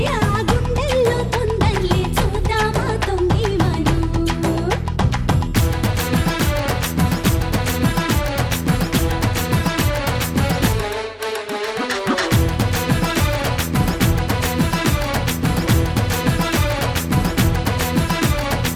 ఆ గుండెల్లో తొందరలే చూద్దామా తొంగి మనం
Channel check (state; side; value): identical; both; correlation 1.00